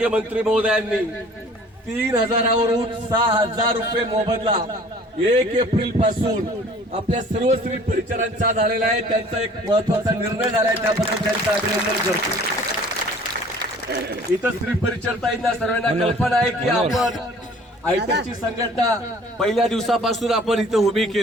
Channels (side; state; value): both; normal; correlation 0.50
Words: मंत्री महोदयांनी 3,000वरून 6,000 रुपये मोबदला 1 एप्रिल पासून आपल्या सर्व स्त्री परिचरांचा झालेला आहे। त्यांचा एक महत्वाचा निर्णय झालाय, त्याबद्दल त्यांचं अभिनंदन करतो। इथं स्त्री परिचरताईंना सर्वांना कल्पना आहे की आपण आयटकची संघटना पहिल्या दिवसापासून आपण इथं उभी